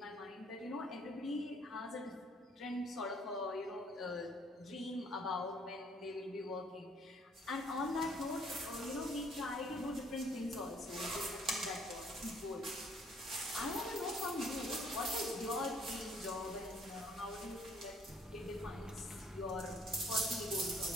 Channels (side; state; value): both; normal; correlation 0.62